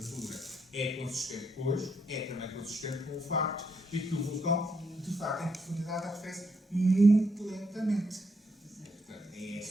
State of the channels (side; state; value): both; normal; correlation 0.77